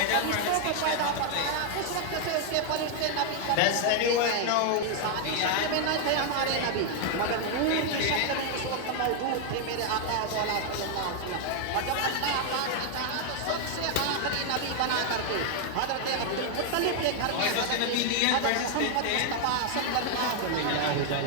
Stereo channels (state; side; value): different; both; correlation 0.00